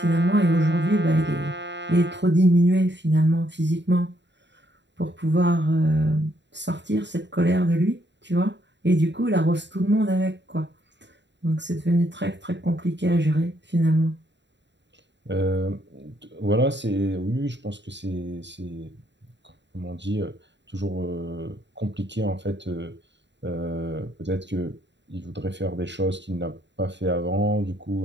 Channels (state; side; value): late; left; 0.52 ms